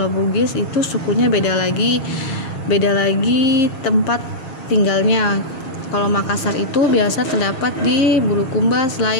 Bugis itu sukunya beda lagi tempat tinggalnya. Kalau Makassar itu biasa terdapat di Bulukumba,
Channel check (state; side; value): late; right; 7.4 ms